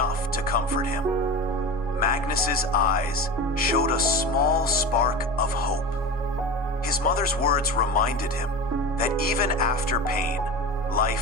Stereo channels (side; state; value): both; normal; correlation 0.29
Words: to comfort him. Magnus's eyes showed a small spark of hope. His mother's words reminded him that even after pain,